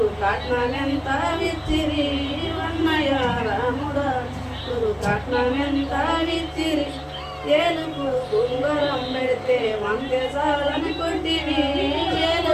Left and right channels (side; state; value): both; identical; correlation 1.00